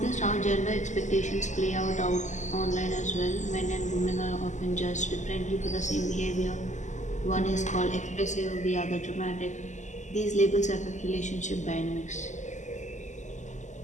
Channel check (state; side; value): late; right; 0.34 ms